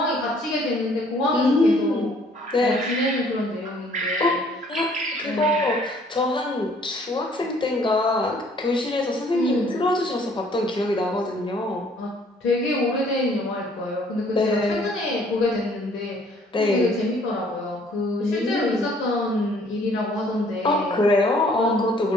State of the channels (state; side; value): normal; both; correlation 0.60